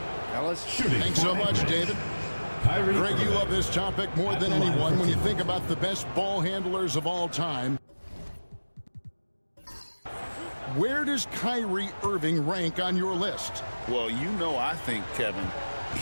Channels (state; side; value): inverted; both; correlation -1.00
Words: Fellas, Thanks so much, David. Greg, you love this topic more than anyone when you think about the best ball handlers of all time. Where does Kyrie Irving rank on your list? Well, you know, I think, Kevin,